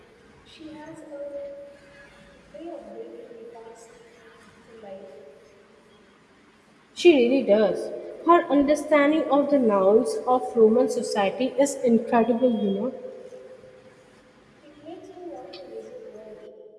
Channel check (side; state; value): both; identical; correlation 1.00